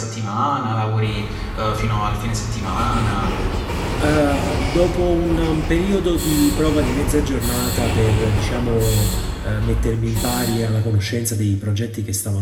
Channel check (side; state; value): both; identical; correlation 1.00